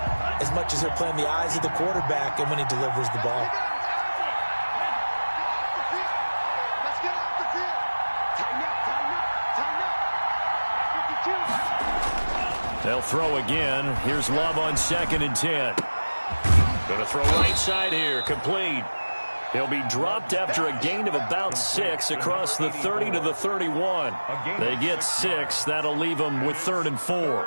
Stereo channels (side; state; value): both; inverted; correlation -1.00